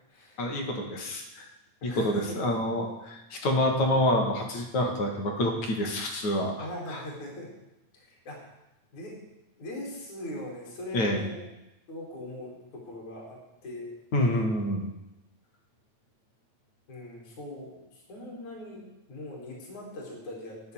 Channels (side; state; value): right; late; 9.1 ms